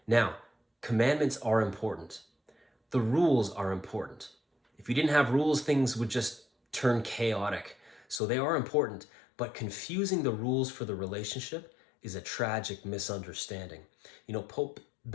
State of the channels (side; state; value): right; drops out; at 8.2 s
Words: Now, commandments are important. The rules are important. If we didn't have rules, things would just turn chaotic. So they are important, but confusing the rules for the relationship is a tragic misunderstanding. You know, Pope